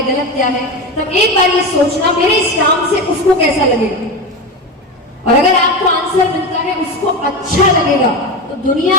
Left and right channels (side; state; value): both; normal; correlation 0.20